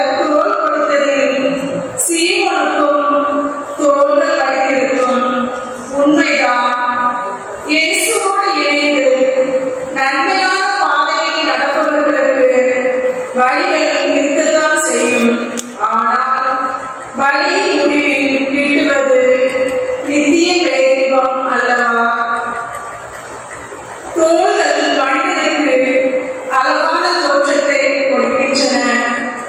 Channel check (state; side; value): identical; both; correlation 1.00